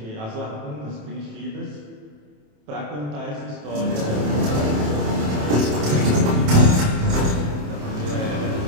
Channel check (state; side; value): late; left; 27 ms